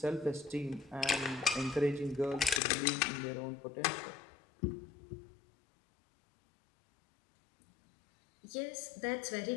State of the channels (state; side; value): drops out; right; at 2.6 s